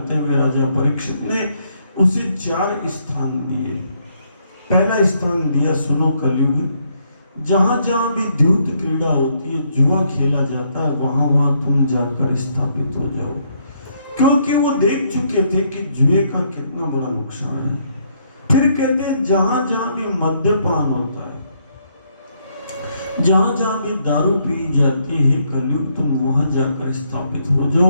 हुए राजा परीक्षित ने उसे 4 स्थान दिए। पहला स्थान दिया, सुनो कलयुग, जहां जहां भी द्यूत क्रीड़ा होती है, जुआ खेला जाता है, वहां वहां तुम जाकर स्थापित हो जाओ, क्योंकि वो देख चुके थे कि जुए का कितना बड़ा नुकसान है। फिर कहते हैं जहां जहां भी मद्यपान होता है, जहां जहां भी दारू पी जाती है, कलयुग तुम वहां जाकर स्थापित हो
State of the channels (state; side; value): inverted; both; correlation -0.72